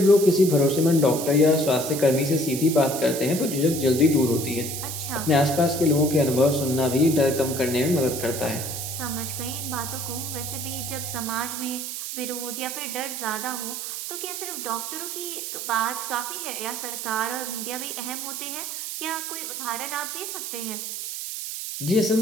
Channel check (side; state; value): right; noise; hiss, 6 dB below the sound